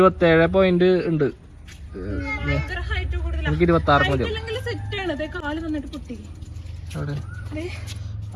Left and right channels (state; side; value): identical; both; correlation 1.00